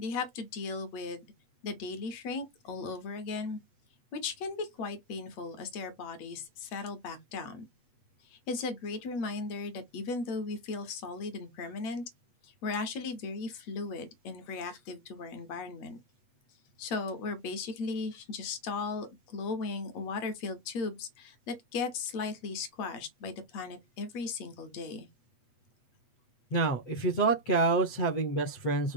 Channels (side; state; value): right; late; 8.2 ms